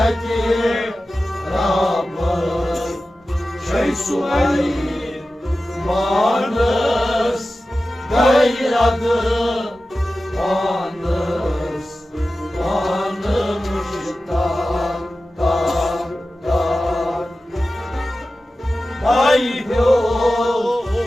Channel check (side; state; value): both; normal; correlation 0.94